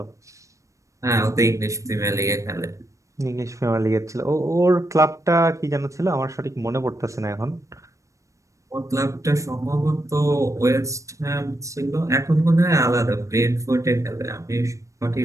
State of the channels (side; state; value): left; late; 0.15 ms